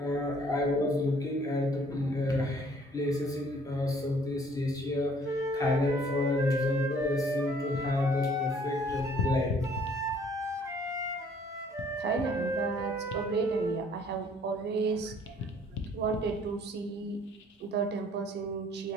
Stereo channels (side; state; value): both; normal; correlation 0.59